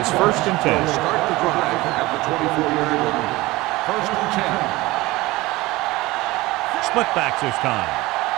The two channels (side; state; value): left; quieter; 20.0 dB